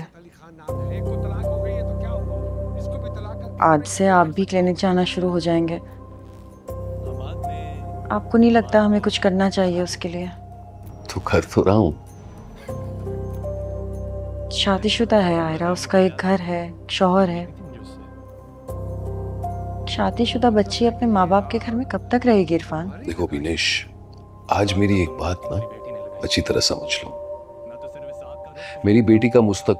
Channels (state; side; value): identical; both; correlation 1.00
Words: आज से आप भी क्लिनिक जाना शुरू हो जाएंगे। आपको नहीं लगता हमें कुछ करना चाहिए उसके लिए? तो कर तो रहा हूँ। शादीशुदा है आयरा, उसका एक घर है, शौहर है। शादीशुदा बच्ची अपने माँ बाप के घर में कब तक रहेगी इरफान? देखो बिनेश, आज मेरी एक बात ना अच्छी तरह समझ लो। मेरी बेटी का